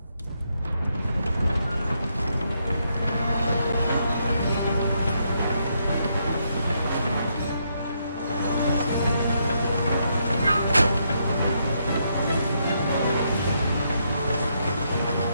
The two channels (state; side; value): inverted; both; correlation -0.77